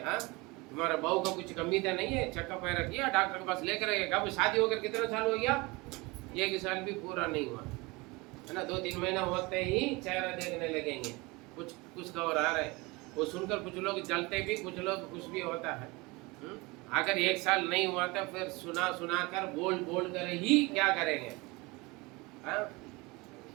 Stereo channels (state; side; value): quieter; left; 24.6 dB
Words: हाँ, तुम्हारा बहू का कुछ कमी तो नहीं है? चेकअप वगैरह किया, डॉक्टर के पास लेकर गए? कब शादी होकर कितना साल हो गया? 1 साल भी पूरा नहीं हुआ है ना। 2-3 महीना होते ही चेहरा देखने लगेंगे, कुछ खबर आ रहा है। वो सुनकर कुछ लोग जलते भी, कुछ लोग खुश भी होता है। अगर 1 साल नहीं हुआ तो फिर सुना कर बोल कर ही क्या करेंगे?